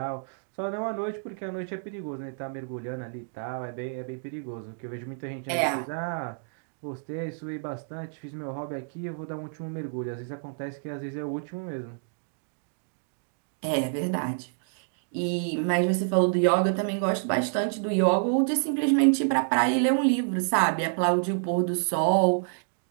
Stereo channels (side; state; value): left; silent; digital silence